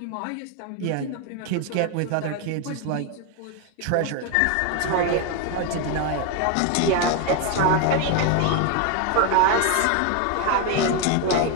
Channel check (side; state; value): both; different; correlation 0.01